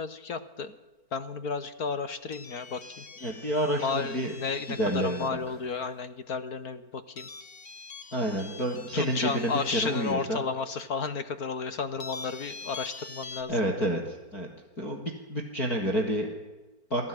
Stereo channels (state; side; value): late; right; 4.4 ms